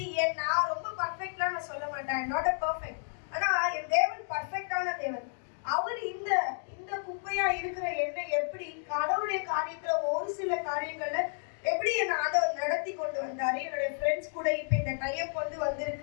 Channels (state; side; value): silent; right; digital silence